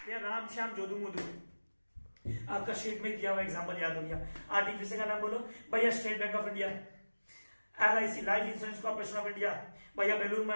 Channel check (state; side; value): inverted; both; correlation -1.00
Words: राम श्याम जोधू मोदू। आपका शीट में दिया हुआ एग्जाम्पल याद हो गया। आर्टिफिशियल का नाम बोलो भैया, state bank of India, LIC, life insurance corporation of India, भैया बेलूर